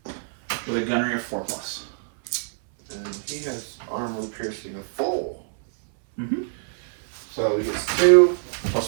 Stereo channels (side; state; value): left; silent; 62 dB below the other